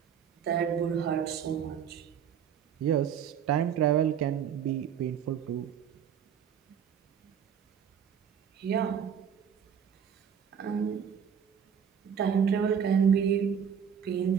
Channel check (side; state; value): left; quieter; 8.0 dB